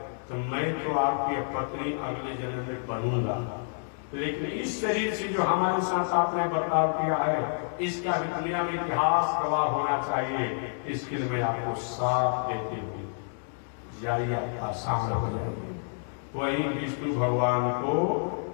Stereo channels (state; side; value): silent; right; digital silence